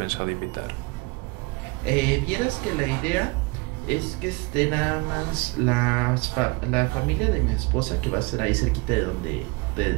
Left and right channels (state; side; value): quieter; left; 26.3 dB